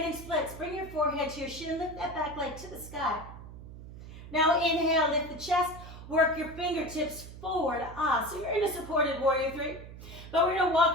splits. Bring your forehead to your shin, lift that back leg to the sky. Now inhale, lift the chest, work your fingertips forward. So you're in a supported warrior three, but we're gonna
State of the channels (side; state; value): right; noise; hum, 14 dB below the sound